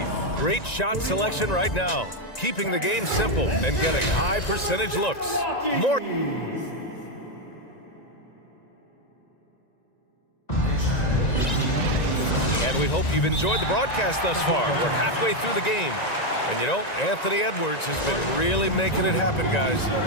Great shot selection right now, keeping the game simple and getting high percentage looks. More. And we hope you've enjoyed the broadcast thus far. We're halfway through the game. And you know, Anthony Edwards has been really making it happen, guys.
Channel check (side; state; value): right; late; 1.9 ms